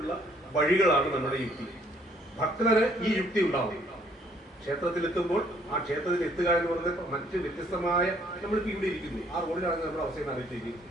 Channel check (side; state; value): both; normal; correlation 0.64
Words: വഴികളാണ് നമ്മുടെ യുക്തി. ഭക്തന് ഈ യുക്തി ഉണ്ടാവും. ക്ഷേത്രത്തിലെത്തുമ്പോൾ ആ ക്ഷേത്രത്തിൽ എത്തുക എന്ന് പറയുന്നത് മറ്റ് വ്യത്യസ്തമായ, നമ്മളിപ്പോൾ ഇവിടെ ഇരിക്കുന്നു, ആ റോഡിലാണ് നമ്മുടെ അവസ്ഥയിൽ അറിയിച്ചിരിക്കുന്നത്.